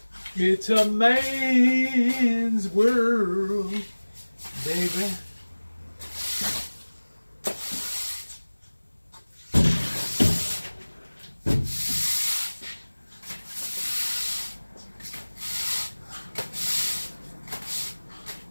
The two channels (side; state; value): both; inverted; correlation -1.00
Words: It's a man's world, baby.